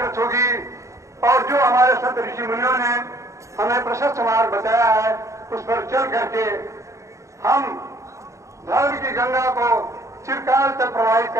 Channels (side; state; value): left; late; 0.15 ms